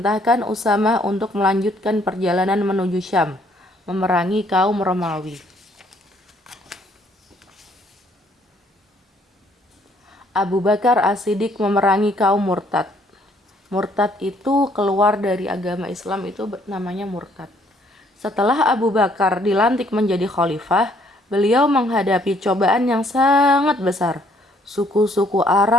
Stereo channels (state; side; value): normal; both; correlation 0.65